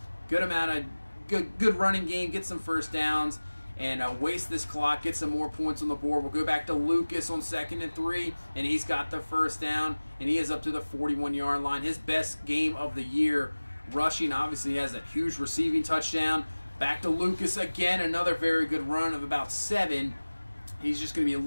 good amount of good running game, get some first downs, and waste this clock, get some more points on the board. We'll go back to Lucas on 2nd and 3, and he's got the first down, and he is up to the 41-yard line. His best game of the year. Rushing, obviously, has a huge receiving touchdown. Back to Lucas again, another very good run of about 7. He's just going to be a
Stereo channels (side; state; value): both; inverted; correlation -1.00